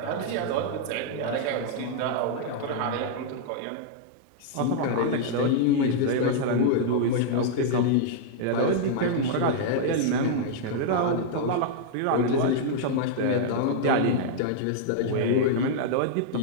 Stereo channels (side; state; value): both; different; correlation -0.01